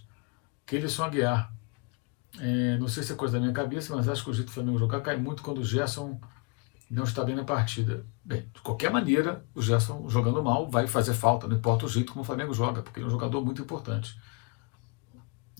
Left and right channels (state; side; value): quieter; right; 30.9 dB